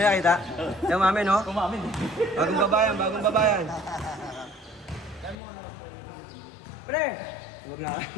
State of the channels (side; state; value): right; drops out; at 5.4 s